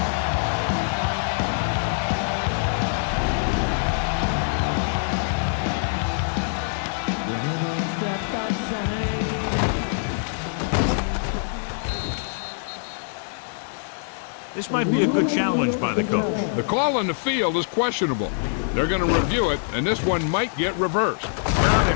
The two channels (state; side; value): silent; right; digital silence